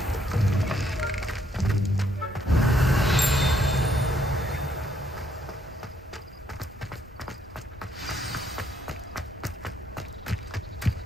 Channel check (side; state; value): both; normal; correlation 0.71